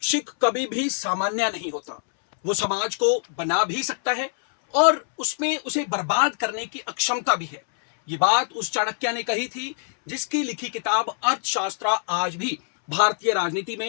शैक्षिक कभी भी सामान्य नहीं होता। वो समाज को बना भी सकता है और उसमें उसे बर्बाद करने की अक्षमता भी है। ये बात उस चाणक्य ने कही थी जिसकी लिखी किताब अर्थशास्त्र आज भी भारतीय राजनीति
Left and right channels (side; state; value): right; silent; 63 dB below the other